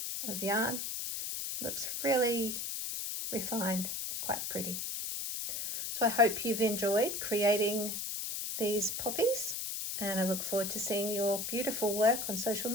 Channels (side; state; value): left; noise; hiss, 3 dB below the sound